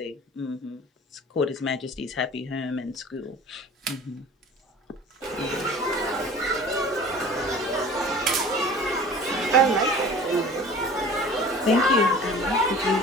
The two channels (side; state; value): both; normal; correlation 0.43